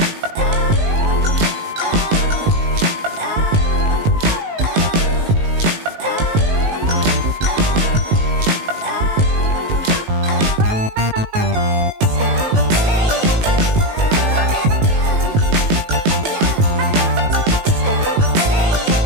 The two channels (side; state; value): left; late; 19 ms